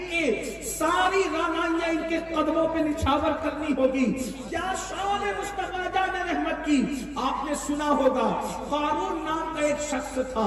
کے ساری رانائیاں ان کے قدموں پہ نچھاور کرنی ہوگی۔ کیا شان مصطفیٰ جان رحمت کی آپ نے سنا ہوگا، قارون نام کا ایک شخص تھا،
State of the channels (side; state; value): both; identical; correlation 1.00